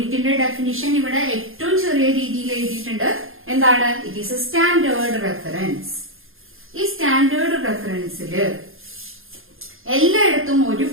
ഡെഫിനിഷൻ ഇവിടെ ഏറ്റവും ചെറിയ രീതിയിൽ എഴുതിയിട്ടുണ്ട്. എന്താണ്? It is a standard reference. ഈ സ്റ്റാൻഡേർഡ് റെഫറൻസില് എല്ലായിടത്തും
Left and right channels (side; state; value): left; late; 0.60 ms